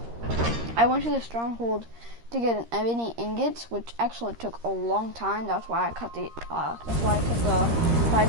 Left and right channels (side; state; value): left; late; 13 ms